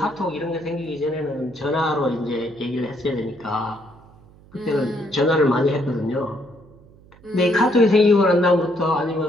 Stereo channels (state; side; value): noise; right; hum, 25 dB below the sound